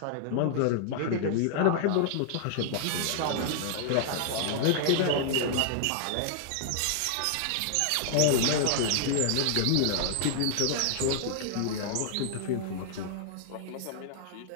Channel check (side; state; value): both; different; correlation -0.01